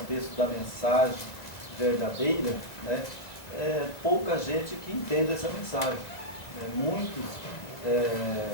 da mensagem verdadeira, né, pouca gente que entende essa mensagem. Muitos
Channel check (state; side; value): late; right; 2.0 ms